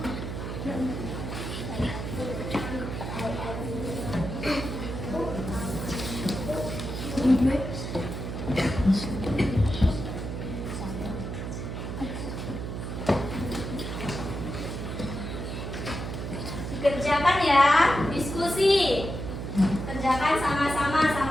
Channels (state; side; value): noise; right; hum, 5 dB below the sound